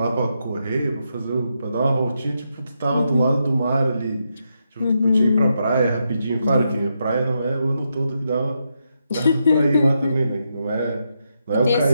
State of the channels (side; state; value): both; inverted; correlation -0.83